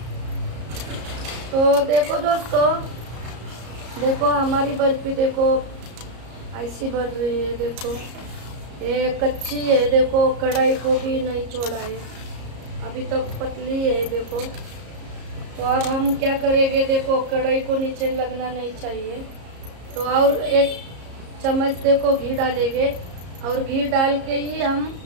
तो देखो दोस्तों, देखो हमारी बर्फी देखो ऐसी बन रही है। देखो ये कच्ची है, देखो कढ़ाई को भी नहीं छोड़ा है। अभी तक पतली है देखो। तो अब हम क्या करेंगे, देखो कढ़ाई को नीचे लगना नहीं चाहिए, तो और एक चम्मच देखो घी डालेंगे, और घी डाल के ही हम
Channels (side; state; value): left; late; 34 ms